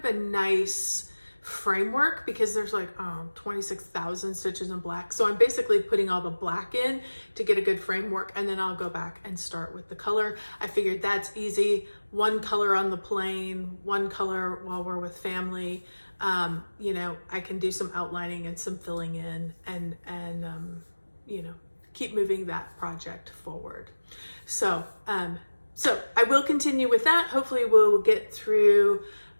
a nice framework, because there's like 26,000 stitches in black. So I'm basically putting all the black in to get a good framework, and then I'll go back and start with the color. I figured that's easy. One color on the plane, one color while we're with family. You know, I can do some outlining and some filling in, and you know, keep moving that project forward. So I will continue with that. Hopefully we'll get through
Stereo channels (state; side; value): inverted; both; correlation -1.00